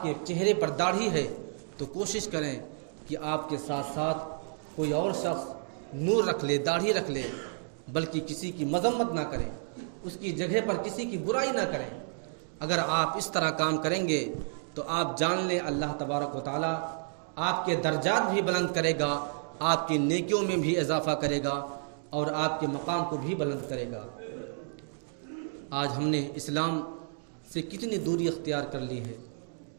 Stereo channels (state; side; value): silent; left; digital silence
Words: کے چہرے پر داڑھی ہے، تو کوشش کریں کہ آپ کے ساتھ ساتھ کوئی اور شخص نور رکھ لے، داڑھی رکھ لے، بلکہ کسی کی مذمت نہ کریں، اس کی جگہ پر کسی کی برائی نہ کریں. اگر آپ اس طرح کام کریں گے تو آپ جان لیں اللہ تبارک و تعالیٰ آپ کے درجات بھی بلند کرے گا، آپ کی نیکیوں میں بھی اضافہ کرے گا اور آپ کے مقام کو بھی بلند کرے گا. آج ہم نے اسلام سے کتنی دوری اختیار کر لی ہے.